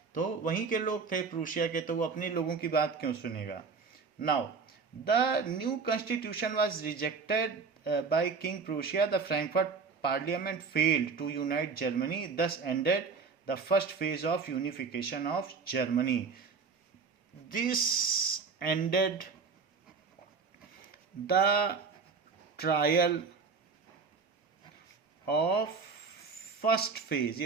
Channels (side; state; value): left; quieter; 5.2 dB